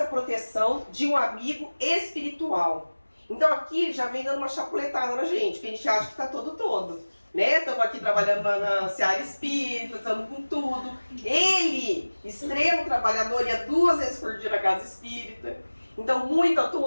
proteção de um amigo espiritual. Então aqui já vem dando uma chapuletada na gente, porque a gente acha que está todo, né? Estamos aqui trabalhando na seara espírita, estamos com tudo. Ele, extremo trabalhador, ia 2 vezes por dia na casa espírita. Então, muito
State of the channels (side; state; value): both; inverted; correlation -1.00